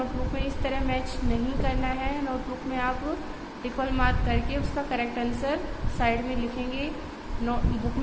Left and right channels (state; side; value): identical; both; correlation 1.00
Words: में इस तरह मैच नहीं करना है। नोटबुक में आप इक्वल मार्क करके उसका करेक्ट आंसर साइड में लिखेंगे। नोटबुक